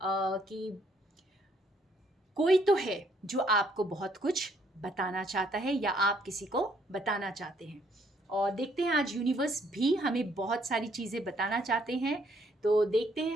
कि कोई तो है जो आपको बहुत कुछ बताना चाहता है या आप किसी को बताना चाहते हैं। और देखते हैं आज यूनिवर्स भी हमें बहुत सारी चीज़ें बताना चाहते हैं, तो देखते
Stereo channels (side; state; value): both; normal; correlation 0.67